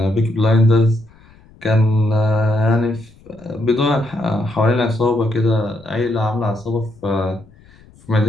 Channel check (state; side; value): noise; left; rumble, 27 dB below the sound